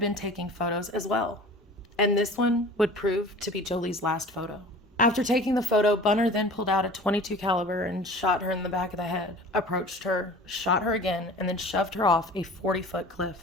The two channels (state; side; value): normal; both; correlation 0.42